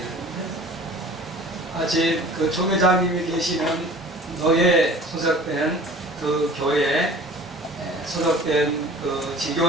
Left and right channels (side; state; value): both; normal; correlation 0.44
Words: 아직 그 조계장님이 계시는 노예 소속된 그 교회에 소속된 그